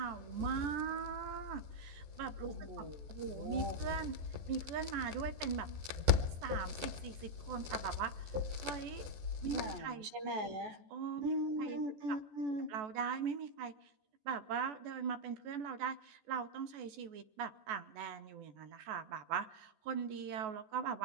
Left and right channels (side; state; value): left; late; 14 ms